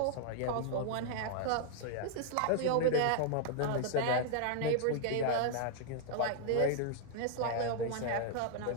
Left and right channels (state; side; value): different; both; correlation 0.00